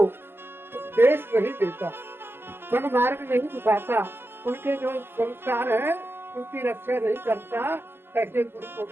नहीं देता, सन्मार्ग नहीं दिखाता, उनके जो संस्कार है उनकी रक्षा नहीं करता, ऐसे गुरु को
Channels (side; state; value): left; late; 0.11 ms